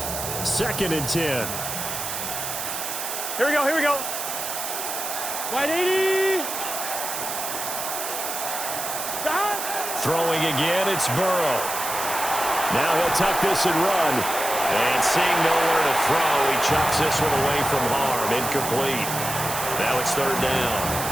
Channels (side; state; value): right; noise; hiss, 5 dB below the sound